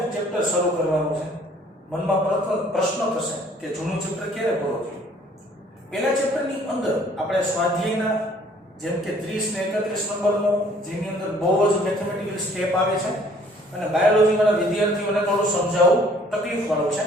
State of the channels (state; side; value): normal; both; correlation 0.58